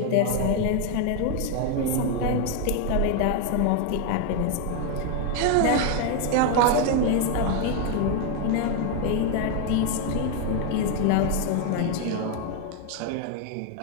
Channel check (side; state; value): both; different; correlation 0.01